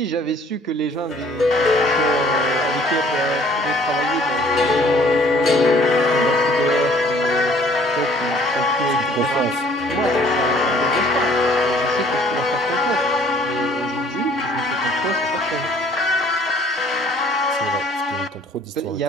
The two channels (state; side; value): normal; both; correlation 0.56